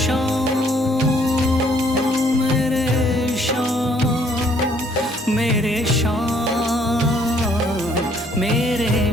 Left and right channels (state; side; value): normal; both; correlation 0.64